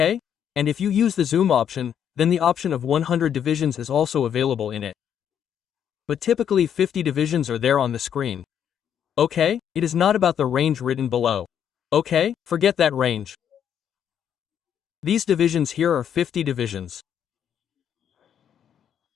And if you use the zoom option, then the option of 100 divisions is also available in it. But typically 50 divisions are there on the screen. Okay? It is not about the range written below. Okay? Forget that range. These divisions here are 50 divisions.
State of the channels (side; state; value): right; quieter; 8.9 dB